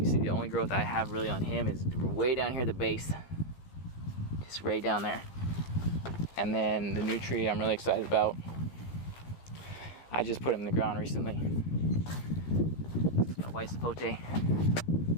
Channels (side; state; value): right; late; 15 ms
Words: see the only growth I have really on him is way down here at the base. Just right down there. And then the new tree I'm really excited about. I just put him in the ground recently. My white sapote.